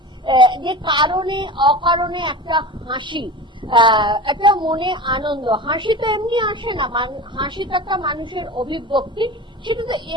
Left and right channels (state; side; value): normal; both; correlation 0.33